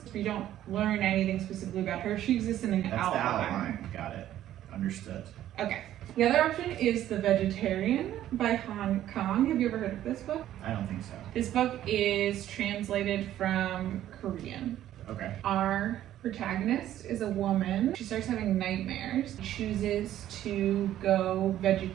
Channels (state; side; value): quieter; left; 12.4 dB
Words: You don't learn anything specifically about her. She exists in an That's outline. the outline. Got it. Understood. Okay. The other option is The Vegetarian by Han Kang. Have you ever heard of this book? I don't think so. This book is translated from Korean. Okay. Our protagonist is a woman. She starts having nightmares, chooses to go